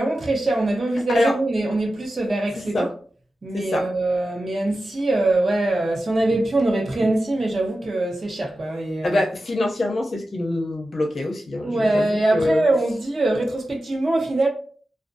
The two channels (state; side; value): normal; both; correlation 0.92